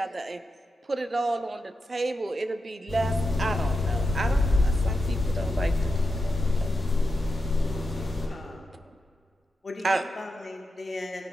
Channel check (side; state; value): both; normal; correlation 0.88